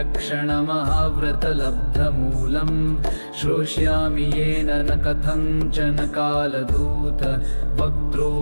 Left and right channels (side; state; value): both; inverted; correlation -1.00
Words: श्रोष्यामि येन न कथञ्चन कालदूत